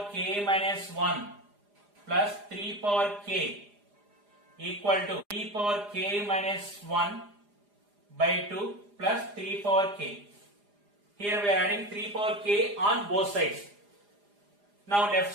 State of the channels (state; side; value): late; left; 4.9 ms